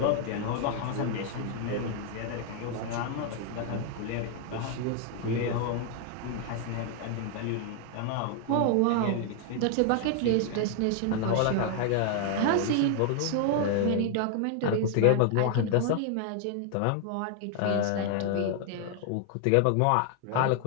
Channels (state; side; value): different; both; correlation 0.00